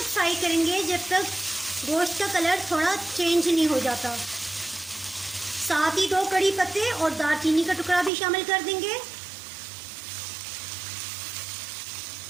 फ्राई करेंगे जब तक गोश्त का कलर थोड़ा चेंज नहीं हो जाता। साथ ही 2 कड़ी पत्ते और दालचीनी का टुकड़ा भी शामिल कर देंगे।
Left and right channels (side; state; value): left; drops out; at 8.1 s